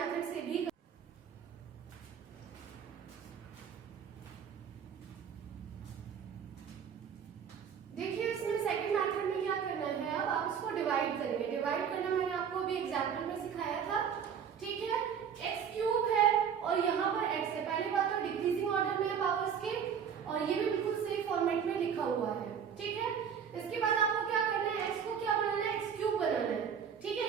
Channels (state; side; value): quieter; left; 7.6 dB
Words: से भी देखिए, इसमें सेकंड मेथड में क्या करना है, अब आप इसको डिवाइड करेंगे। डिवाइड करना मैंने आपको अभी एग्जांपल में सिखाया था। ठीक है, x क्यूब है और यहाँ पर x है। पहली बात तो डिक्रीजिंग ऑर्डर में है पावर्स के, और ये भी बिल्कुल सेम फॉर्मेट में लिखा हुआ है। ठीक है, इसके बाद आपको क्या करना है, x को क्या बनाना है, x क्यूब बनाना है। ठीक है,